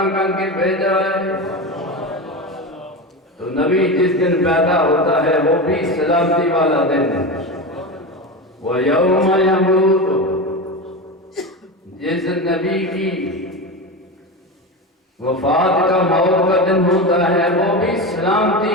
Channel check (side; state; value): both; normal; correlation 0.22